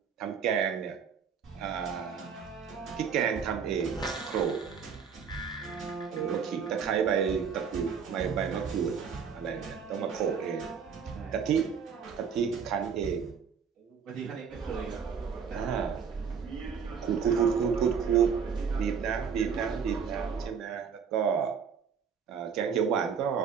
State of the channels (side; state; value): left; quieter; 6.6 dB